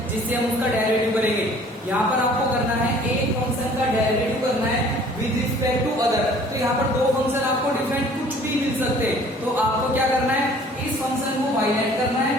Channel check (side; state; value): both; normal; correlation 0.53